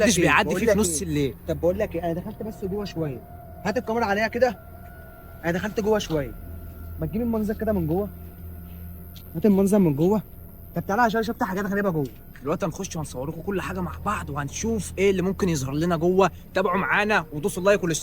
بيعدي فيه في نص الليل. طب بقول لك ايه، انا دخلت بس جوه شويه، هات الكاميرا عليها كده. انا دخلت جوه شويه، ما تجيب المنظر كده من جوه، هات المنظر من جوه. طب تعالى عشان شفت حاجات غريبه جوه. دلوقتي هنخش وهنصور لكم كل حاجه مع بعض، وهنشوف ايه اللي ممكن يظهر لنا جوه. تابعوا معانا ودوسوا اللايك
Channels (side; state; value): both; identical; correlation 1.00